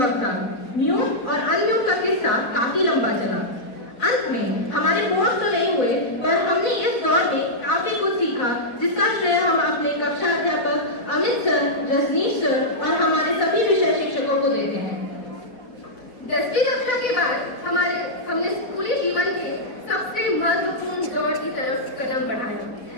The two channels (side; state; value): right; late; 4.0 ms